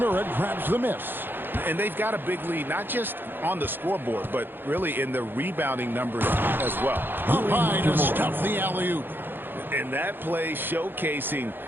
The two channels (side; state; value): left; late; 0.099 ms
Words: grabs the miss. And they've got a big lead, not just on the scoreboard, but really in the rebounding numbers as well. Up high to stuff the alley-oop. And that play showcasing